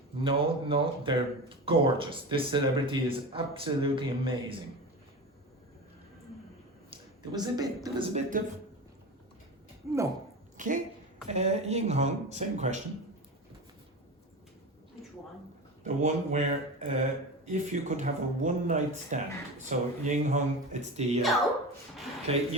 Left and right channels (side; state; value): both; normal; correlation 0.27